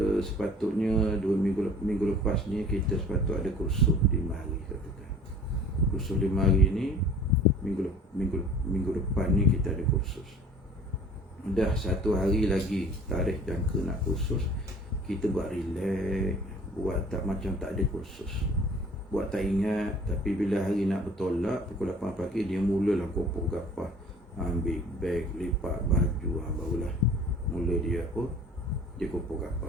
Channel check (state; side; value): normal; both; correlation 0.48